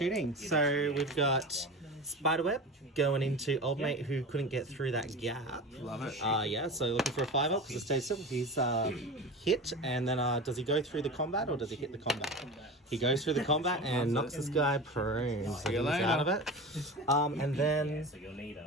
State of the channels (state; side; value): normal; both; correlation 0.31